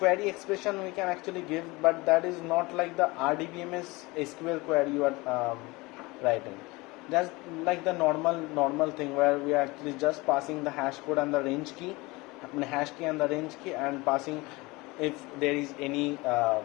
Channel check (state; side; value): quieter; right; 23.2 dB